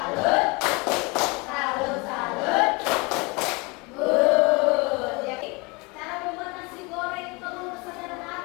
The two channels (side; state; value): right; quieter; 27.6 dB